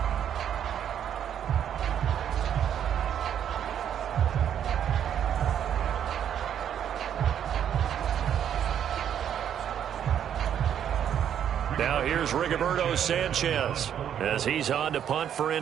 Now here's Rigoberto Sanchez as he's on to punt for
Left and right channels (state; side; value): quieter; left; 9.4 dB